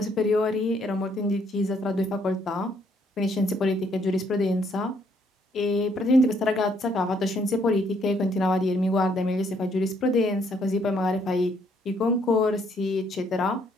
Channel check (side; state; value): both; normal; correlation 0.69